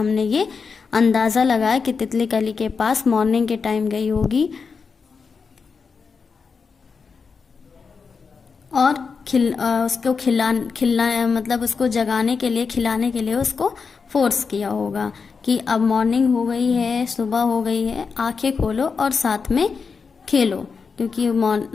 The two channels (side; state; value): right; quieter; 5.3 dB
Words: ये अंदाज़ा लगाया कि तितली कली के पास मॉर्निंग के टाइम गई होगी और उसको खिलाना मतलब उसको जगाने के लिए खिलाने के लिए उसको फोर्स किया होगा कि अब मॉर्निंग हो गई है, सुबह हो गई है, आंखें खोलो और साथ में खेलो, क्योंकि